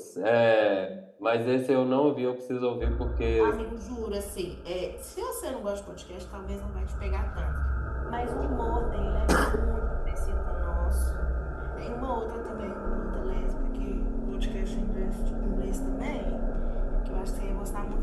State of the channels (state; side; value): identical; both; correlation 1.00